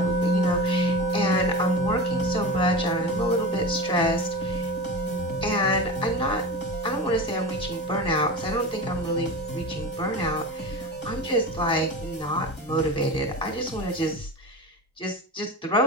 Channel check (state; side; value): normal; both; correlation 0.28